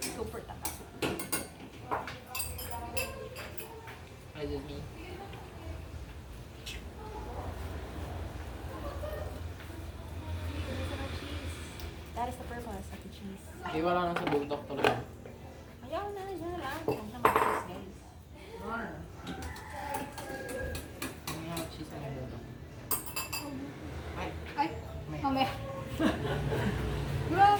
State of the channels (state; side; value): identical; both; correlation 1.00